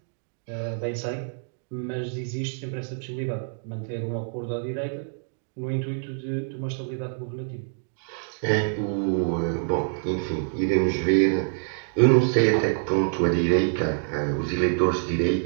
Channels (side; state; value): left; silent; digital silence